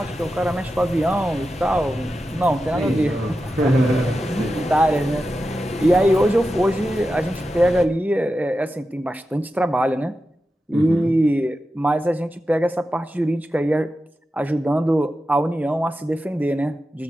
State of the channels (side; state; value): both; normal; correlation 0.91